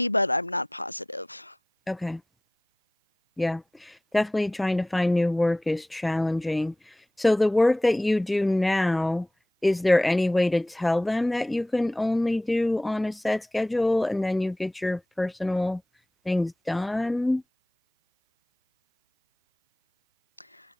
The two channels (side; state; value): both; normal; correlation 0.89